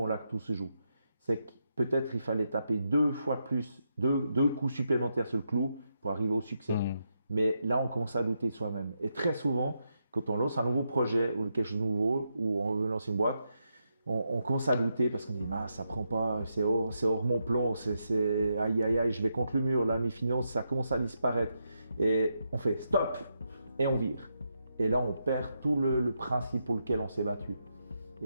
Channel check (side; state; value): both; inverted; correlation -0.83